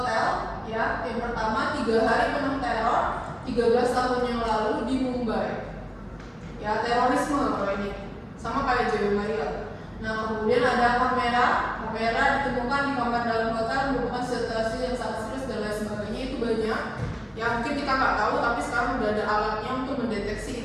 Yang pertama, 3 hari penuh teror 13 tahun yang lalu di Mumbai. Ya, terorisme kalau ini. Sama kayak Joy Maria. Nah, kemudian ada kamera ditemukan di kamar dalam hotel merupakan situasi yang sangat serius dan lain sebagainya. Itu banyak yang mungkin kita nggak tahu, tapi sekarang udah ada alatnya untuk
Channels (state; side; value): identical; both; correlation 1.00